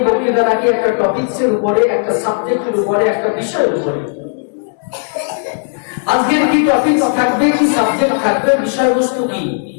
বক্তৃতা রাখি একটা টপিকসের উপরে, একটা সাবজেক্টের উপরে, একটা বিষয়ের উপরে। আজকের কি টপিক থাকবে, কি সাবজেক্ট থাকবে, বিষয়বস্তু কি?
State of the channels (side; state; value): right; silent; 70 dB below the other